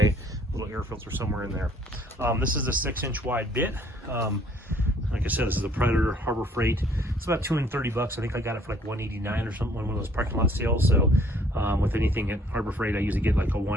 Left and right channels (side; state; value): both; normal; correlation 0.60